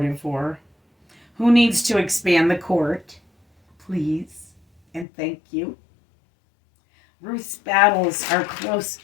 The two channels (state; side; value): drops out; right; at 5.1 s